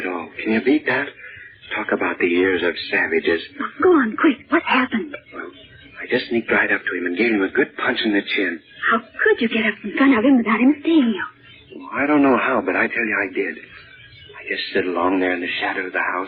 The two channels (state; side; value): identical; both; correlation 1.00